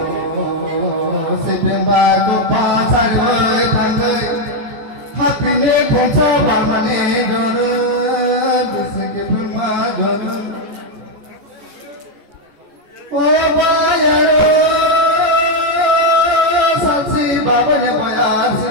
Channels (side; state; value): left; late; 14 ms